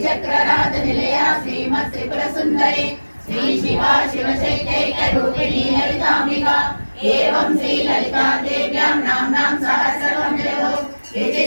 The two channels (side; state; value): both; inverted; correlation -1.00